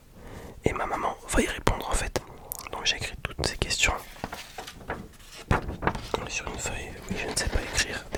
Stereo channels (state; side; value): identical; both; correlation 1.00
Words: et ma maman va y répondre en fait. Donc j'ai écrit toutes ces questions sur une feuille. Oui, je ne sais pas écrire,